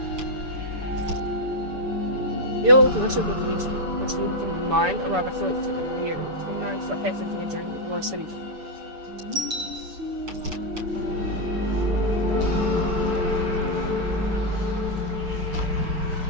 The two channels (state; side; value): late; left; 6.9 ms